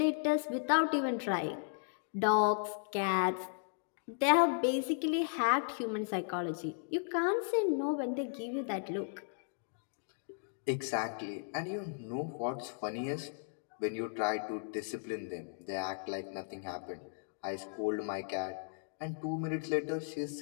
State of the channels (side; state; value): right; silent; digital silence